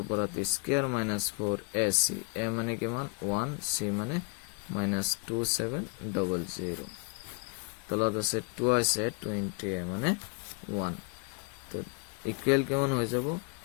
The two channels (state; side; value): quieter; right; 34.1 dB